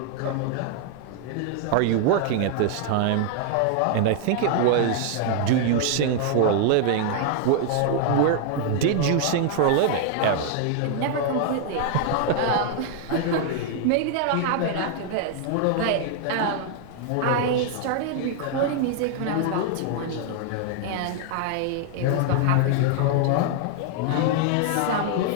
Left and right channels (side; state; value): both; different; correlation 0.00